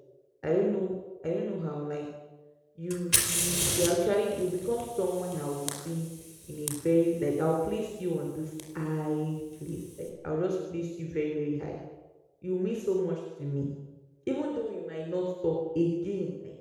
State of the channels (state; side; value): identical; both; correlation 1.00